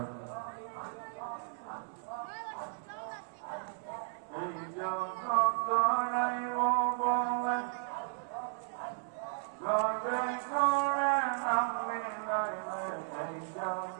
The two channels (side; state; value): left; silent; 54 dB below the other